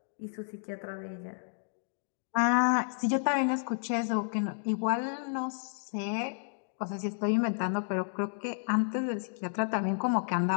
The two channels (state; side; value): silent; right; digital silence